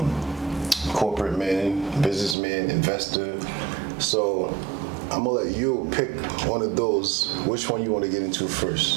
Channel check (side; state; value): left; drops out; at 2.4 s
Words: Corporate man, businessman, investor. So I'm gonna let you pick one of those. Which one you want to get into